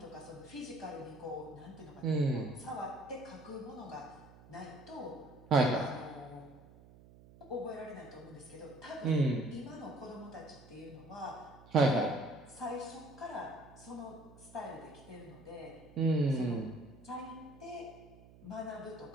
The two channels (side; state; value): right; noise; hum, 21 dB below the sound